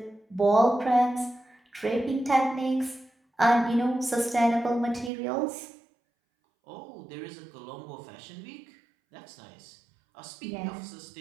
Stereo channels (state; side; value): drops out; left; at 5.1 s